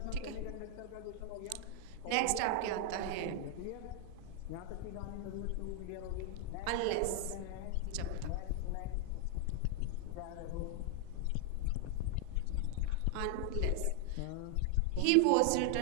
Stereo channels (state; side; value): different; both; correlation 0.00